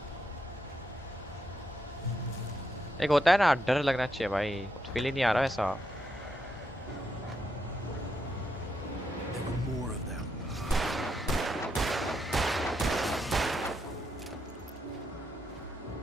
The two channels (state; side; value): normal; both; correlation 0.81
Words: एक होता है ना डर लगना चाहिए भाई, फील ही नहीं आ रहा ऐसा। There were more of them.